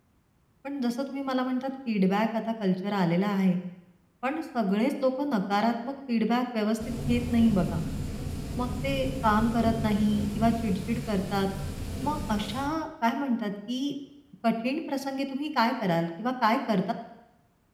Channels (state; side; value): identical; both; correlation 1.00